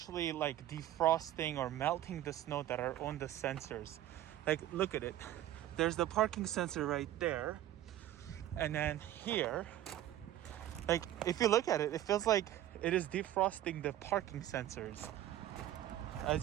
like defrosting or melting the snow that are on the sensors? Like, look at it. There's the parking sensor right there. And then here, like if you look at it, it feels like it is defrosting the parking sensors,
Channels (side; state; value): left; quieter; 13.0 dB